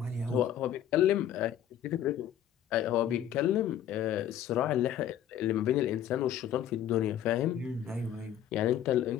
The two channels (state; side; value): quieter; right; 10.5 dB